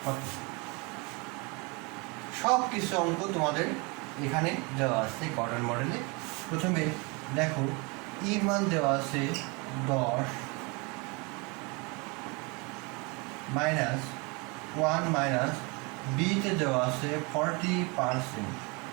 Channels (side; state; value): left; quieter; 29.0 dB